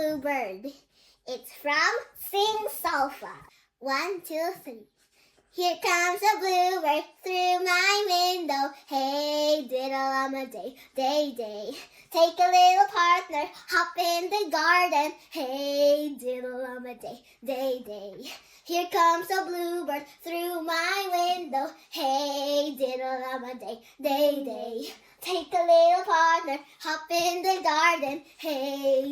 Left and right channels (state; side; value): identical; both; correlation 1.00